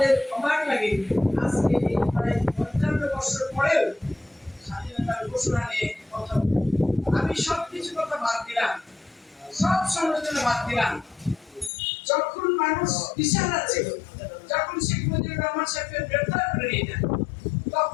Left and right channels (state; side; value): drops out; right; at 11.7 s